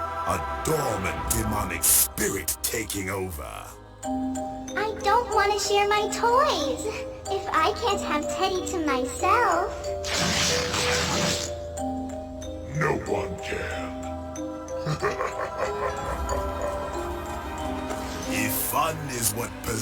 dormant demonic spirit taking over. I don't want to share my toys. If I can't have Teddy to myself. No one can. If fun is what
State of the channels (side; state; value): both; identical; correlation 1.00